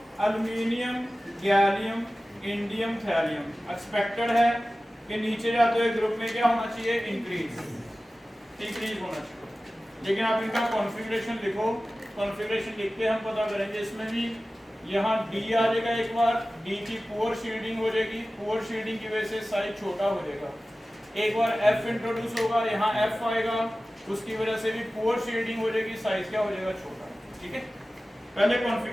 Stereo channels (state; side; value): normal; both; correlation 0.96